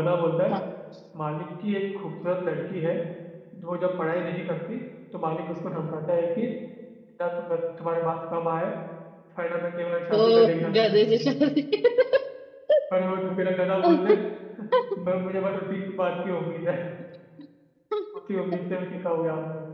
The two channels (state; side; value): identical; both; correlation 1.00